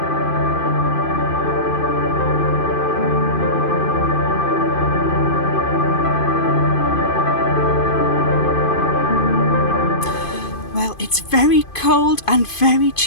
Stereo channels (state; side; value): late; right; 2.5 ms